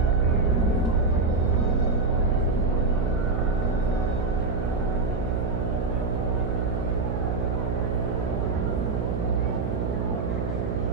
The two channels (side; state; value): right; noise; hum, 2 dB below the sound